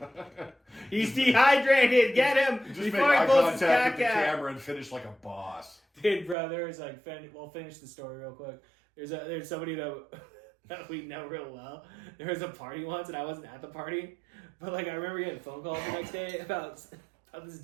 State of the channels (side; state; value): left; drops out; at 6.4 s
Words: He's dehydrated. Get him Just before make he eye pulls his contact cock with the out. camera and finish like a boss. Dude, bro, there's like, we'll finish the story real quick. There's somebody that we know real well. There was a party once, and I wasn't at the party, but like I remember getting a phone call the next day about this